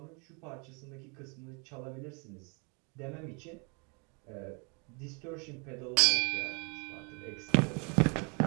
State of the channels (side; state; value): left; quieter; 33.4 dB